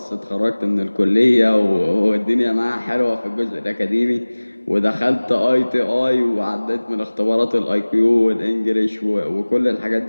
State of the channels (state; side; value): inverted; both; correlation -1.00